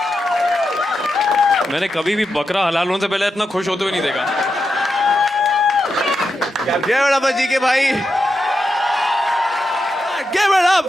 मैंने कभी भी बकरा हलाल होने से पहले इतना खुश होते हुए नहीं देखा। Give it up for GK भाई। Give it up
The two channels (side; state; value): both; normal; correlation 0.87